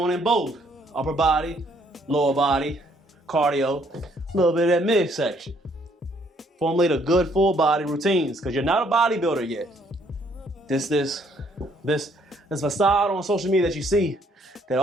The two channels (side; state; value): both; normal; correlation 0.66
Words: in both upper body, lower body, cardio, a little bit of that midsection. Formulate a good full body routines because you're not a bodybuilder yet. This facade on social media that you see that